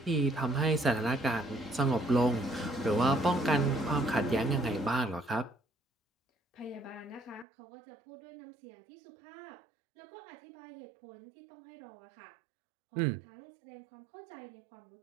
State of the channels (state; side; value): drops out; left; at 7.5 s